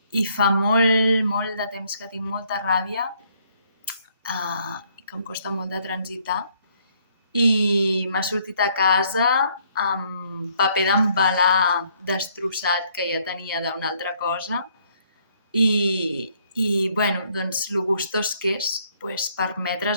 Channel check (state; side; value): inverted; both; correlation -0.66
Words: I fa molt, molt de temps que tinc molta ràbia i que em costa molt de transitar. I m'ha sortit a casa amb paper d'embalar destrossat que ja tenia d'una altra cosa. Bueno, doncs lo gustós que és